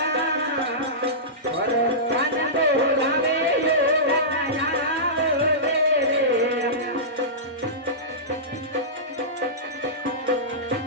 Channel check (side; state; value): both; normal; correlation -0.17